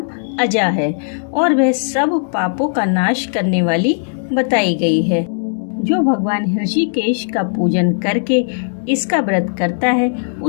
अजा है और वह सब पापों का नाश करने वाली बताई गई है। जो भगवान ऋषिकेश का पूजन करके इसका व्रत करता है,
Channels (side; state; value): right; silent; digital silence